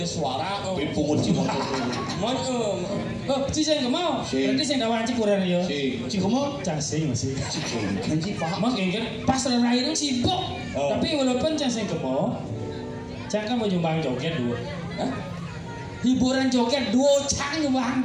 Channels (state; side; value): identical; both; correlation 1.00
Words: suara. Pungut si motor. Man Oh, si saya nggak mau. Berarti saya nggak wajib kurang ya. Si kemo. Cacing masih. Kan si paham. Mak kan pas terakhir itu sibuk. Tapi walaupun cacing nggak mau, jangan mau nyumbang joget dua. Hiburan joget dua cang nyumbang